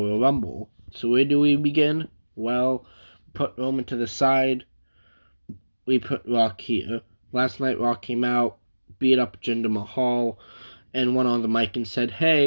Rumble. So where do we begin? Well, put Roman to the side. We put Rock here. Last night, Rock came out, beat up Jinder Mahal, and went on the mic and said,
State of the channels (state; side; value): inverted; both; correlation -1.00